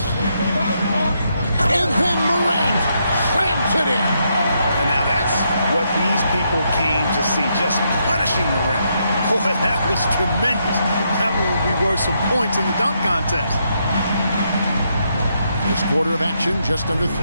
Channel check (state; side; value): inverted; both; correlation -0.78